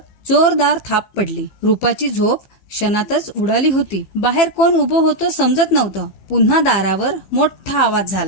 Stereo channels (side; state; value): right; late; 15 ms